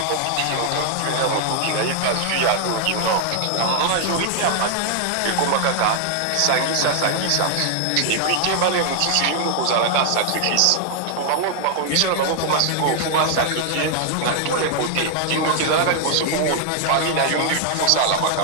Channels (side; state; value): both; different; correlation 0.00